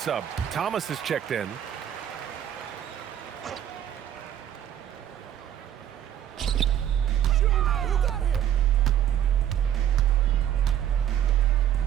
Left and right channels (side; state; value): left; quieter; 10.5 dB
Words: Thomas is checked in.